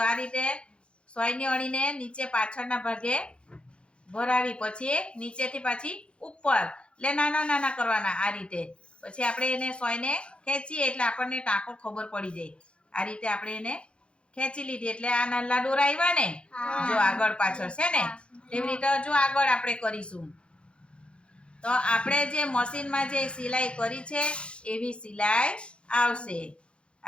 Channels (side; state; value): right; late; 0.057 ms